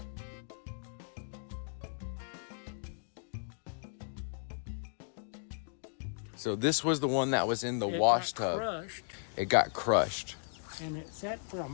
So this was the one that was in the wash tub. Crushed, It got crushed. and it sat for a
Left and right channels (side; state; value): right; silent; digital silence